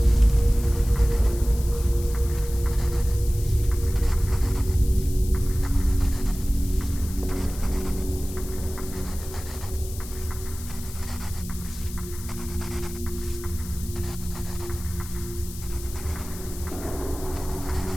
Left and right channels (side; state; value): left; noise; hiss, 14 dB below the sound